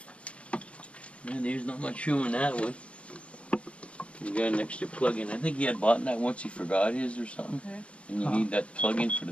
Yeah, there's not much room in that one. You got an extra plug-in. I think he had bought that once he forgot his or something. Okay. And you need that plug-in for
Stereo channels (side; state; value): right; late; 0.061 ms